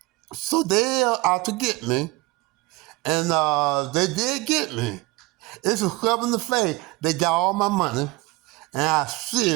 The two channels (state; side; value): quieter; left; 21.9 dB